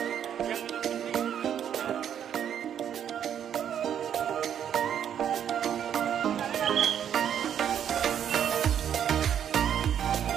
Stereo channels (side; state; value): left; quieter; 9.2 dB